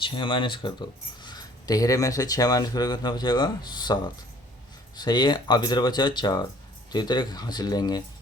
6 माइनस कर दो, 13 में से 6 माइनस करोगे कितना बचेगा 7, सही है। अब इधर बचा 4, तो इधर एक हासिल लेंगे,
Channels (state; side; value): normal; both; correlation 0.55